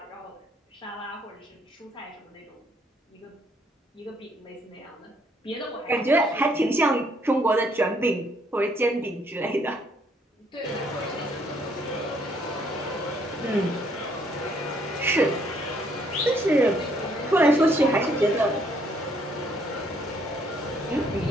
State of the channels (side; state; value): both; normal; correlation 0.67